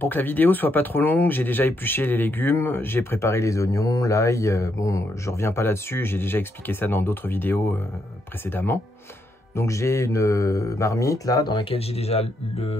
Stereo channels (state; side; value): normal; both; correlation 0.78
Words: que la vidéo soit pas trop longue, j'ai déjà épluché les légumes, j'ai préparé les oignons, l'ail. Bon, je reviens pas là-dessus, j'ai déjà expliqué ça dans d'autres vidéos précédemment. Donc j'ai une marmite là, dans laquelle j'ai déjà